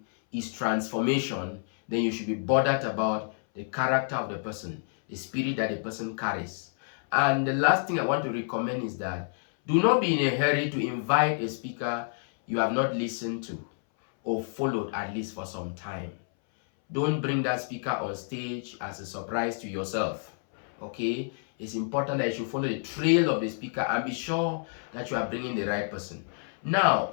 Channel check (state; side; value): silent; right; 59 dB below the other